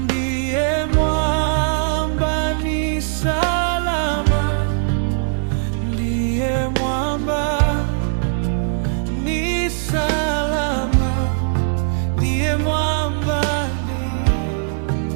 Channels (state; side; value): silent; left; 66 dB below the other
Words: mwamba ni salama, ndiye mwamba ni salama, ndiye mwamba ni